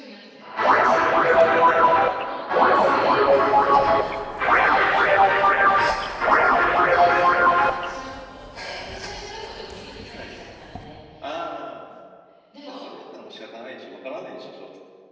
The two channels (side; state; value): both; identical; correlation 1.00